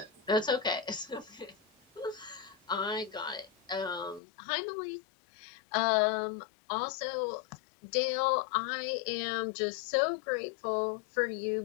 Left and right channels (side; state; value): right; drops out; at 4.2 s